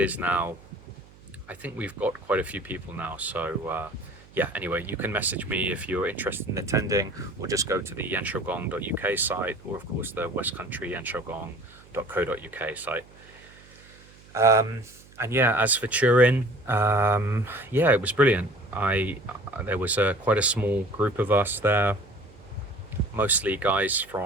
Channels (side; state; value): right; noise; hum, 24 dB below the sound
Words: now, I think we've got quite a few people now. So, yeah, anyway, you can message me if you're interested in attending, or just go to the yanshogong.uk site, or of course the West Country yanshogong.co.uk site. And yeah, as for Turin, yeah, it was brilliant. There was quite a small group of us there, mostly guys